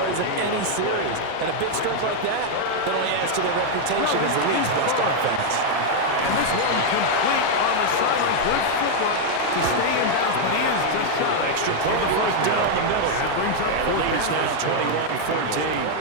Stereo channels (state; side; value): different; both; correlation 0.00